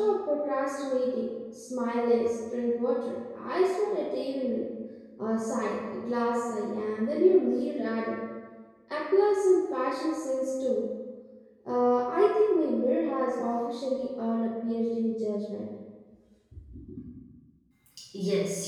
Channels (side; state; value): both; identical; correlation 1.00